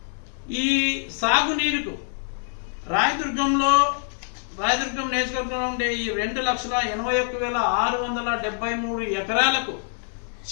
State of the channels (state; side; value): silent; right; digital silence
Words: ఈ సాగునీరుకు రాయదుర్గం నియోజకవర్గంలో ఉండే ఈ 2,81,673 ఎకరాలకు